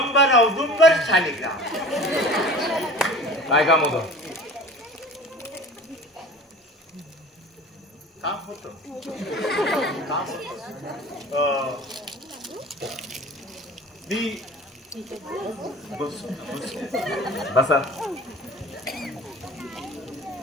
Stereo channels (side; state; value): both; normal; correlation 0.41